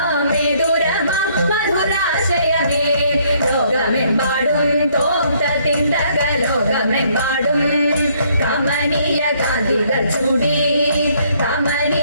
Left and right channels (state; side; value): inverted; both; correlation -0.66